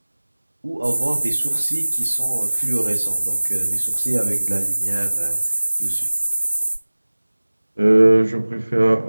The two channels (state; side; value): inverted; both; correlation -1.00